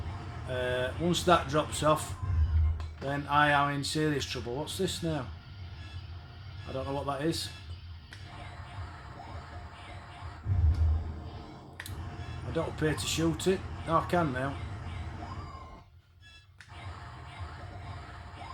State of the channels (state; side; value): identical; both; correlation 1.00